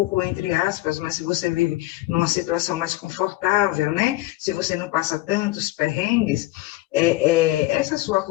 entre aspas, mas se você vive numa situação mais confortável, né? Se você não passa tantos perrengues, essa sua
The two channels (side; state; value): right; quieter; 18.1 dB